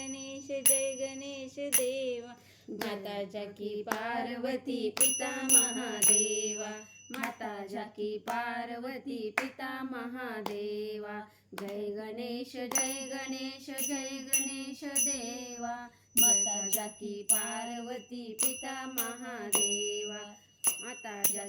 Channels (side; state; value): both; identical; correlation 1.00